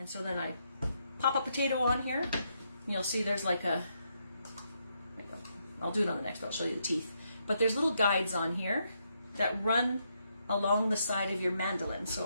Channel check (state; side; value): inverted; both; correlation -0.78